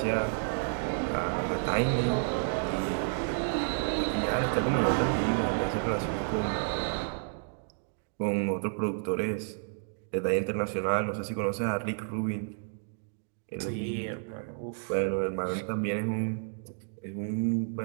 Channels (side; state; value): left; silent; digital silence